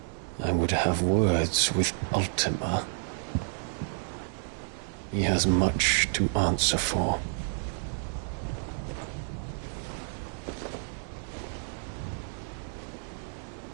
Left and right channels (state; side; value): silent; left; 58 dB below the other